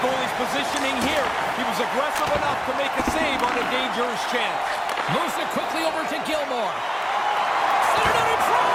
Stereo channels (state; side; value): identical; both; correlation 1.00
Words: goalie's positioning here. He was aggressive enough to make a save on a dangerous chance. Moves it quickly over to Gilmore. Centered out in